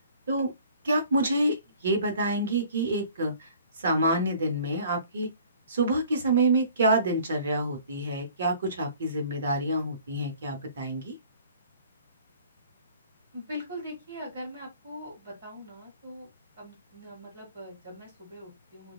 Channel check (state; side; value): inverted; both; correlation -0.52